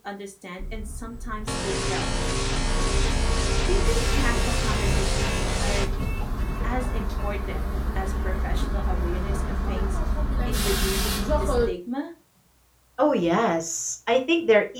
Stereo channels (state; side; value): identical; both; correlation 1.00